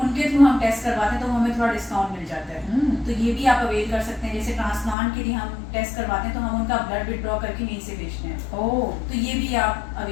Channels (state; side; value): drops out; right; at 5.0 s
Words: थ्रू हम टेस्ट करवाते हैं, तो हमें थोड़ा डिस्काउंट मिल जाता है। तो ये भी आप अवेल कर सकते हैं। जैसे ट्रांसप्लांट के लिए हम टेस्ट करवाते हैं, तो हम उनका ब्लड विड्रॉ करके यहीं से भेजते हैं। ओह, तो ये भी आप